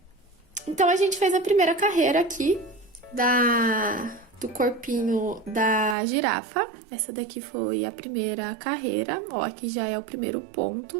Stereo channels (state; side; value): drops out; left; at 6.0 s